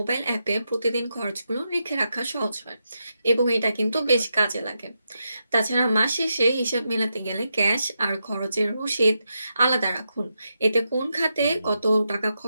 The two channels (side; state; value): both; inverted; correlation -0.85